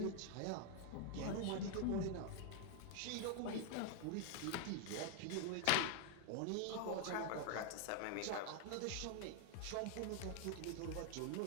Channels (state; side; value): different; both; correlation 0.00